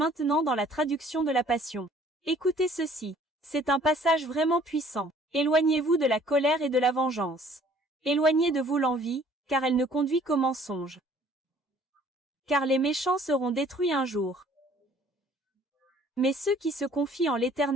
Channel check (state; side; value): normal; both; correlation 0.56